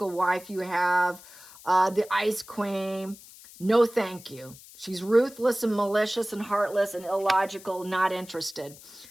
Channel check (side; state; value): left; noise; hiss, 20 dB below the sound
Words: wife you have. The Ice Queen. No, thank you. She's ruthless and malicious and heartless and illogical, not interested.